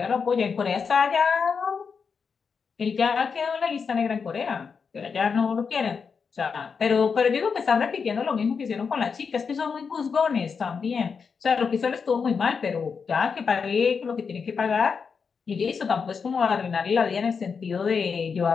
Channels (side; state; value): right; quieter; 5.7 dB